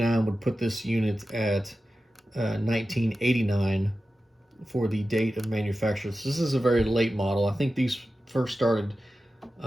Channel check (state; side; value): normal; both; correlation 0.93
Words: would put this unit at 1989 for the date of manufacture. So this is a very late model. I think these first started